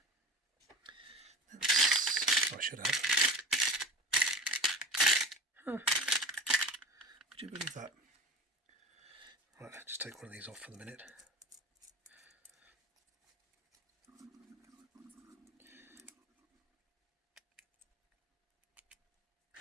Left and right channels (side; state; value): both; normal; correlation 0.34